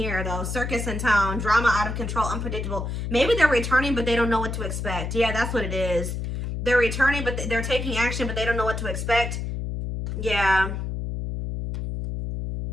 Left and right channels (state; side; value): noise; left; hum, 4 dB below the sound